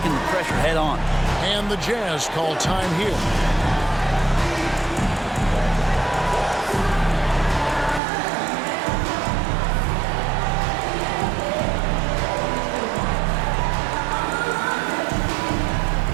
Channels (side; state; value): left; drops out; at 8.0 s